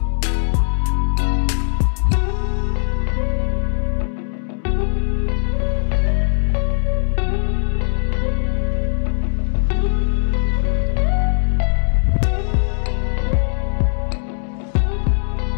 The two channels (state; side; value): silent; right; digital silence